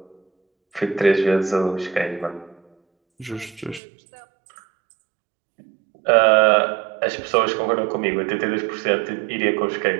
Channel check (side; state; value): left; drops out; at 3.8 s